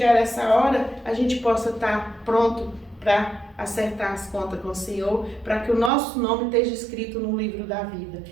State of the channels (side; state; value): left; drops out; at 5.9 s